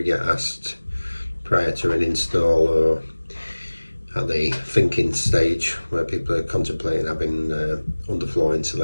get asked prior to an install or at the thinking stage where people are contemplating having underfloor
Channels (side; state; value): both; inverted; correlation -1.00